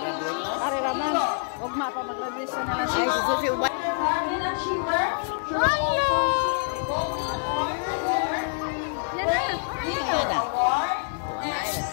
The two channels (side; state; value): right; silent; 58 dB below the other